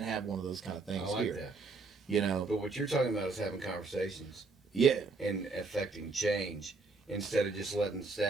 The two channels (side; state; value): left; quieter; 3.9 dB